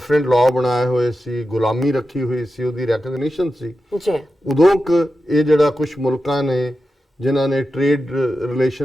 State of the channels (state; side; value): normal; both; correlation 0.91